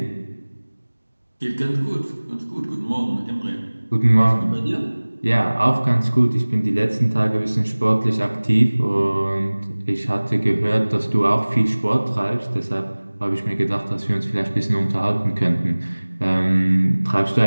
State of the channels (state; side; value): inverted; both; correlation -1.00